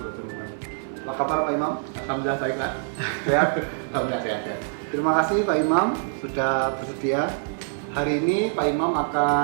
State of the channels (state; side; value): silent; left; digital silence